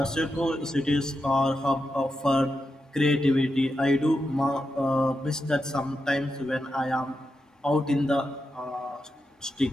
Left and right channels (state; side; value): normal; both; correlation 0.87